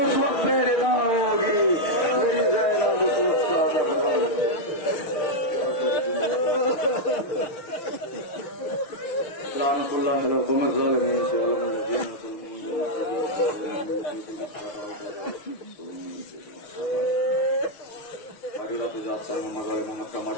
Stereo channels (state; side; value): late; right; 6.2 ms